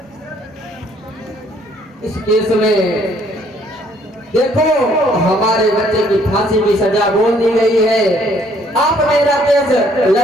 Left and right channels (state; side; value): normal; both; correlation 0.64